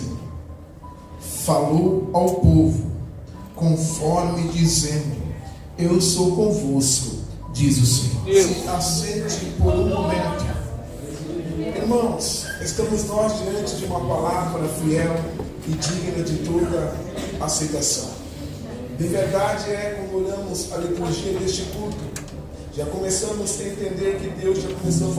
falou ao povo, conforme dizendo: eu sou convosco, diz o Senhor. Se assente por um momento. Irmãos, estamos nós diante de uma palavra fiel e digna de toda aceitação. De verdade quando olhamos a liturgia deste culto, já começamos a entender que Deus já começou a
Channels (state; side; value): identical; both; correlation 1.00